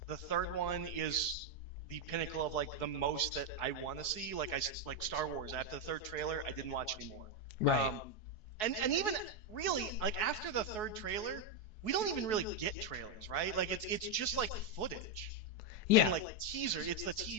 the third one is the pinnacle of like the most that I want to see. Like Star Wars. After the third trailer, I didn't watch anymore. Right. And even really like after the third trailer, we don't even really get trailers, right? Like it's just like footage Yeah. and like teaser. It's the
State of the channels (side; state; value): right; late; 4.7 ms